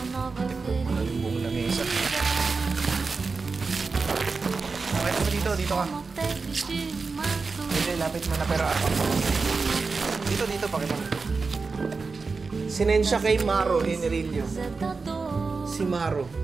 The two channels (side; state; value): left; quieter; 4.4 dB